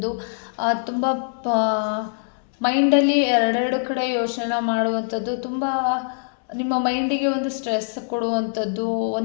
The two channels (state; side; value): silent; right; 64 dB below the other